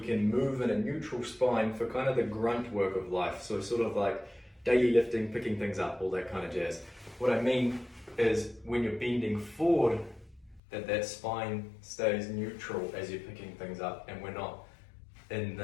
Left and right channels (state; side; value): drops out; right; at 10.6 s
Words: can move in a neutral spine for kind of the grunt work of life, so sort of like daily lifting, picking things up, all that kind of jazz. What I mean is when you're bending forward, that spine stays neutral as you're picking things up, and we're not in